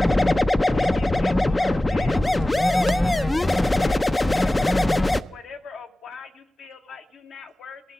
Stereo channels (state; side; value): normal; both; correlation 0.97